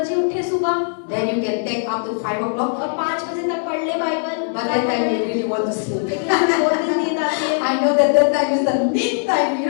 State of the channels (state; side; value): silent; right; digital silence